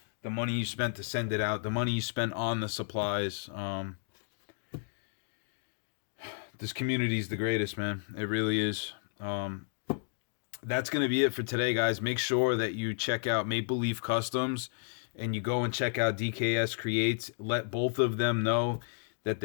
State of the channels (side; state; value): right; silent; digital silence